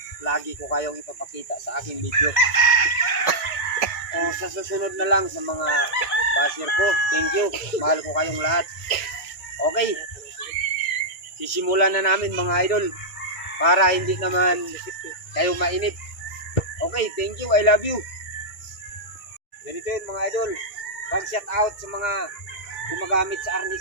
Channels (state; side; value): late; right; 2.0 ms